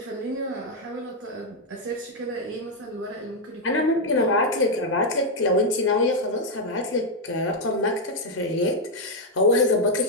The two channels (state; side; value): normal; both; correlation 0.00